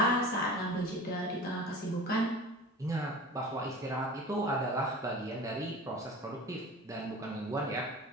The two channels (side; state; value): both; normal; correlation 0.37